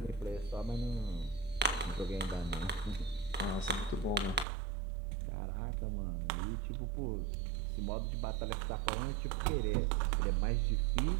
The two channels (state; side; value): drops out; left; at 4.5 s